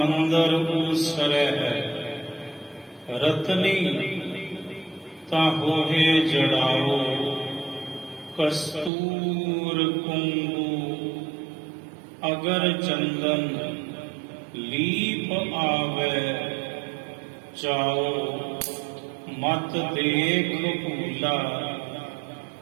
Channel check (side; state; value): left; drops out; at 8.9 s